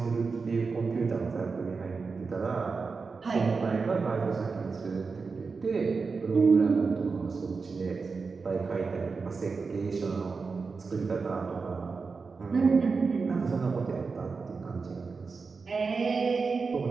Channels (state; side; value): quieter; left; 4.7 dB